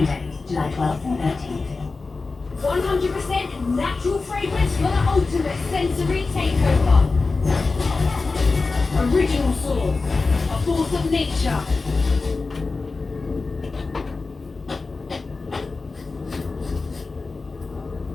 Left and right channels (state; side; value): quieter; right; 3.9 dB